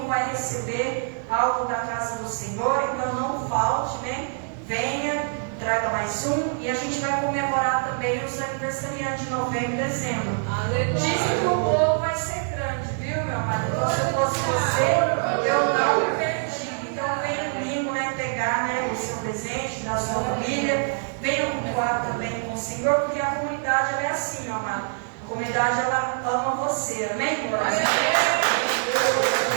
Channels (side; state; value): left; silent; digital silence